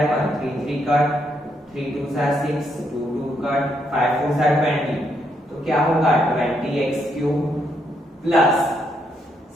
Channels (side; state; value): both; normal; correlation 0.76